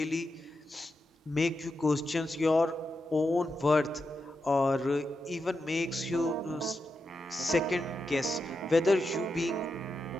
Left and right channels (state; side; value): normal; both; correlation 0.87